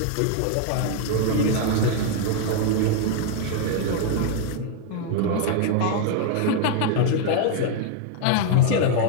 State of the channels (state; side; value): different; both; correlation 0.00